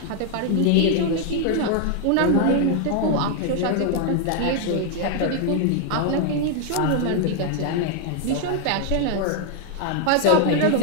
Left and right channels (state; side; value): different; both; correlation 0.00